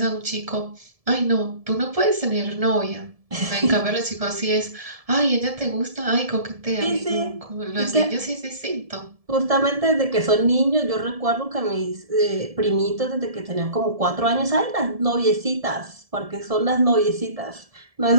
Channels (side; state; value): left; late; 1.7 ms